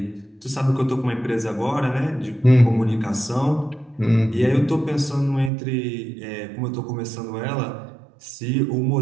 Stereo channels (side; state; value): left; drops out; at 5.5 s